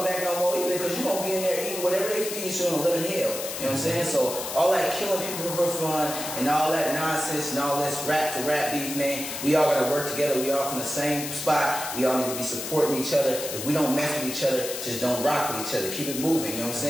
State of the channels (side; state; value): left; noise; hiss, 6 dB below the sound